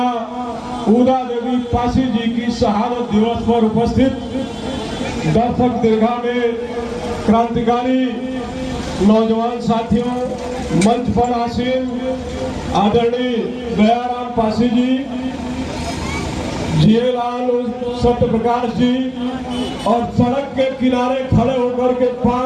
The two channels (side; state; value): both; identical; correlation 1.00